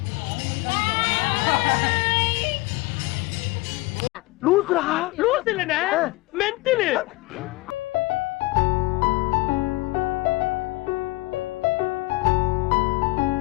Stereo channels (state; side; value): quieter; right; 20.8 dB